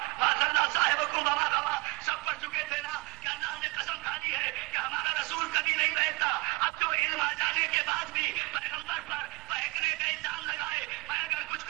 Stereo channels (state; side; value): quieter; left; 25.7 dB